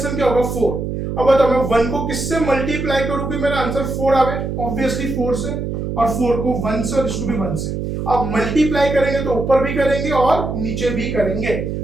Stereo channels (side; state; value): right; noise; hum, 4 dB below the sound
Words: क्या होगा 4। अब बताओ मैं 1 को किससे मल्टीप्लाई करूं कि मेरा आंसर 4 आवे, ऑब्वियसली 4 से, और 4 को 1 से और इसको भी 1 से। अब मल्टीप्लाई करेंगे तो ऊपर भी करेंगे और नीचे भी करेंगे,